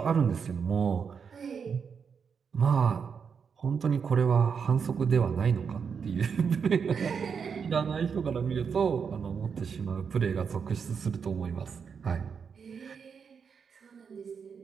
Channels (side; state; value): left; quieter; 6.3 dB